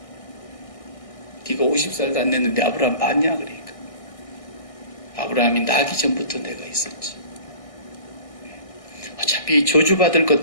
네가 50살도 안 됐는데 아브라함 봤냐 그러니까. 아브라함이 나기 전부터 내가 있었지. 어차피 저주받을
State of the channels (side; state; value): right; late; 1.6 ms